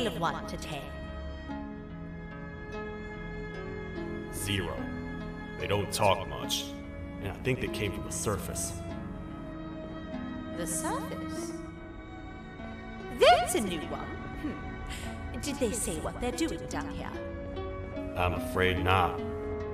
of 1 to 10? 0. They don't talk much, and I think they came from the surface. The surface? That's a new one. Did they say what they're doing down here? I'm afraid not.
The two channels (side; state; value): both; identical; correlation 1.00